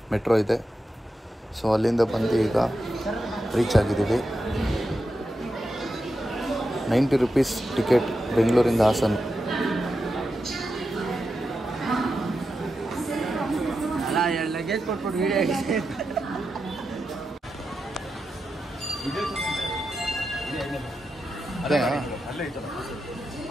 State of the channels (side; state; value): both; normal; correlation 0.88